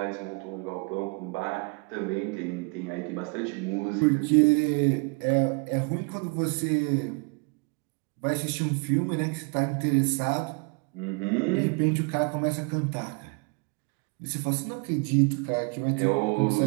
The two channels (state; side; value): quieter; left; 34.2 dB